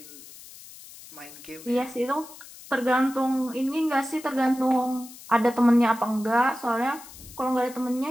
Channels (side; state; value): left; noise; hiss, 18 dB below the sound